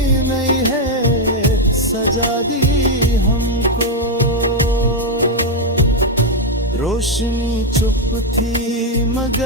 सजा दी हमको। रोशनी चुप थी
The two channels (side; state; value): both; normal; correlation 0.02